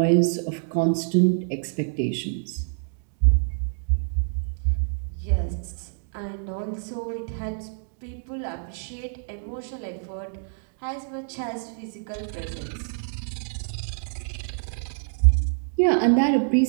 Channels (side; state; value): left; silent; digital silence